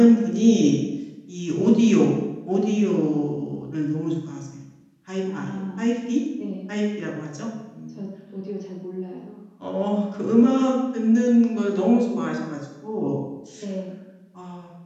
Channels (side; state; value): both; identical; correlation 1.00